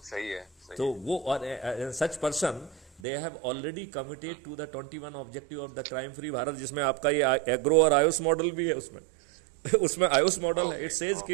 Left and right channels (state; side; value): drops out; left; at 3.0 s